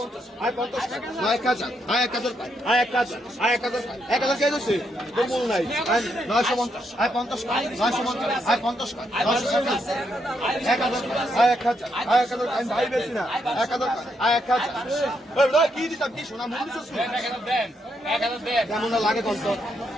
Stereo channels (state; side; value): normal; both; correlation 0.78